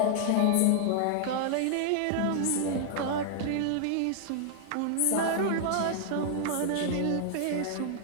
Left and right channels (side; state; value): both; different; correlation -0.01